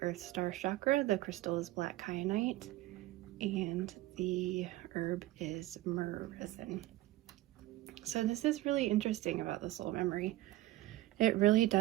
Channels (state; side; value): quieter; left; 16.6 dB